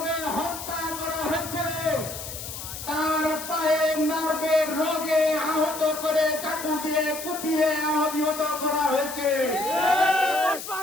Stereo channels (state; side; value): noise; left; hiss, 9 dB below the sound